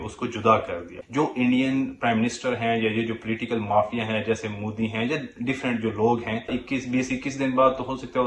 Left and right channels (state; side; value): identical; both; correlation 1.00